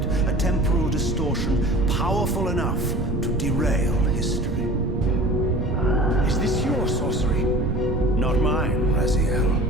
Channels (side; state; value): right; noise; rumble, 3 dB below the sound